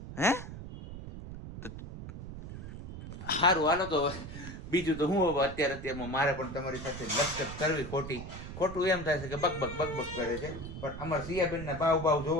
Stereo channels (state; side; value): noise; right; rumble, 10 dB below the sound